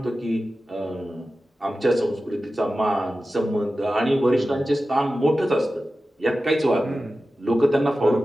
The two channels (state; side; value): normal; both; correlation 0.94